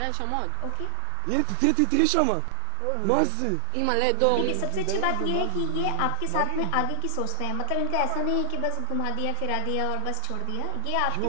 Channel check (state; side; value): different; both; correlation 0.00